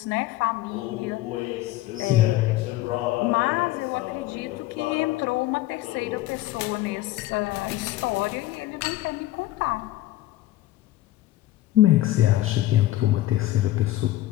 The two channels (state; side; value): quieter; right; 15.6 dB